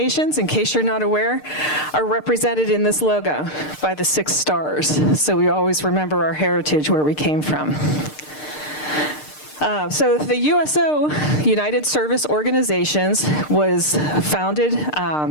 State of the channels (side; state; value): right; late; 6.6 ms